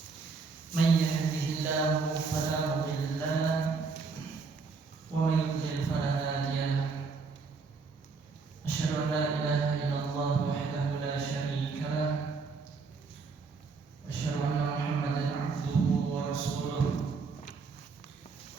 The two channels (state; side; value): quieter; left; 4.7 dB